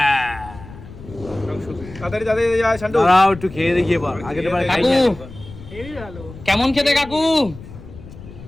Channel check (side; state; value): left; noise; rumble, 16 dB below the sound